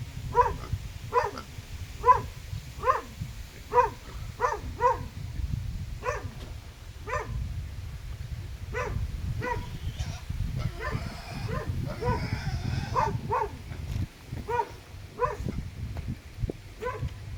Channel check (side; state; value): both; identical; correlation 1.00